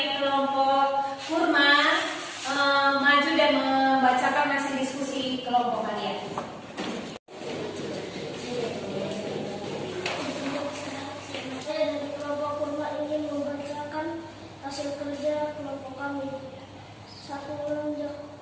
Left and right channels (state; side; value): identical; both; correlation 1.00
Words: kelompok Kurma maju dan membacakan hasil diskusi kelompok kalian. Saya dari kelompok Kurma ingin membacakan hasil kerja kelompok kami. Satu